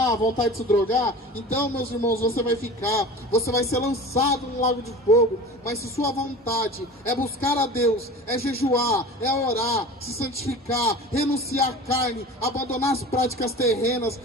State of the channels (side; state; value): both; normal; correlation 0.36